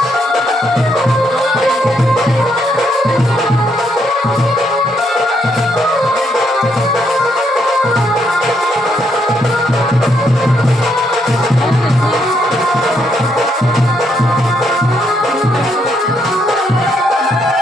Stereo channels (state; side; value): normal; both; correlation 0.75